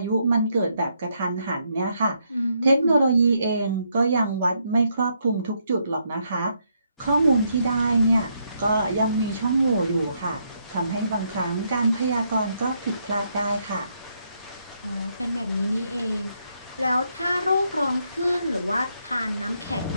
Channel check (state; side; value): inverted; both; correlation -0.76